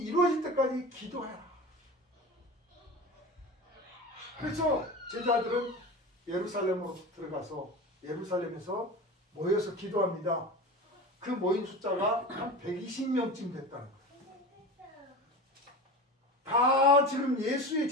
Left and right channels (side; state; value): both; normal; correlation 0.31